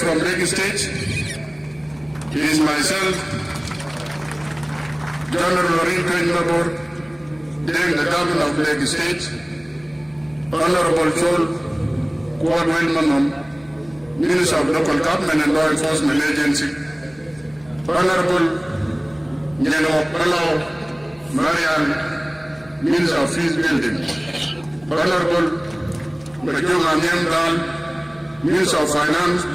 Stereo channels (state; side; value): noise; right; hum, 26 dB below the sound